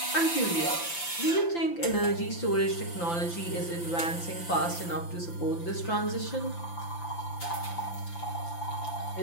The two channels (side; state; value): right; late; 5.9 ms